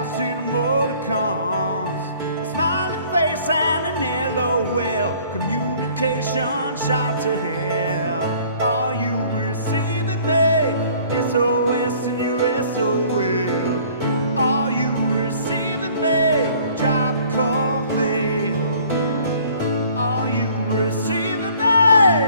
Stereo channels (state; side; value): inverted; both; correlation -0.55